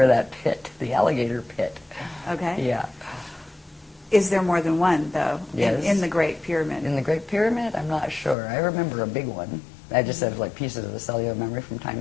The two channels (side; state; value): right; drops out; at 8.3 s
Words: that pit, the alligator pit. Okay. Yeah. Is there more than one, though, Yes. in the Great Pyramid? In the Great Pyramid, I'm not sure. I remember a big one. I just have like pieces of the cellular memory from